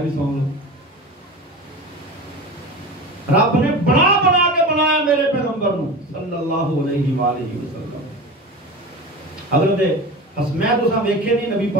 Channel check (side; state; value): both; normal; correlation 0.31